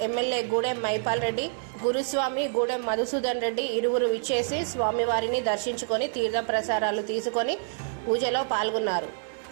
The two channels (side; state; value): left; silent; 60 dB below the other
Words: ఎమ్మెల్యే గూడెం మైపాల్ రెడ్డి, గురుస్వామి గూడెం మధుసూదన్ రెడ్డి ఇరువురు విచ్చేసి స్వామివారిని దర్శించుకొని తీర్థ ప్రసారాలు తీసుకొని పూజలో పాల్గొన్నారు.